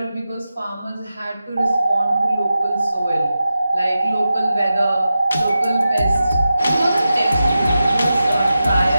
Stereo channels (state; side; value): inverted; both; correlation -0.92